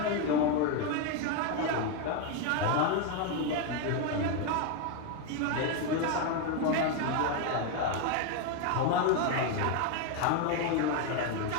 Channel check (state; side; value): different; both; correlation 0.02